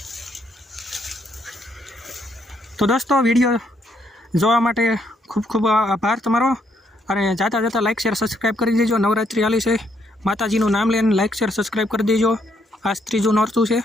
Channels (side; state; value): both; normal; correlation 0.73